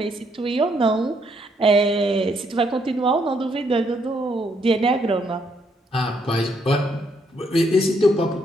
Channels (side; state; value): both; normal; correlation 0.73